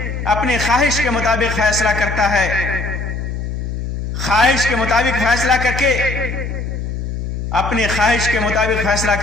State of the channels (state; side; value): noise; left; hum, 4 dB below the sound